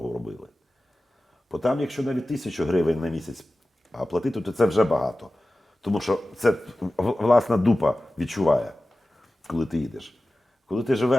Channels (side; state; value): both; normal; correlation 0.95